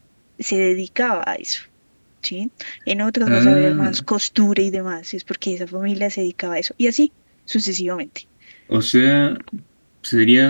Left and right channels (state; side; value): inverted; both; correlation -1.00